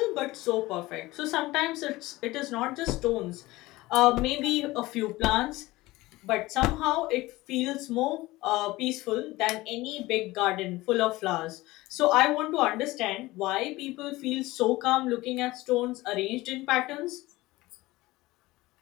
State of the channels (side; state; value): right; quieter; 19.3 dB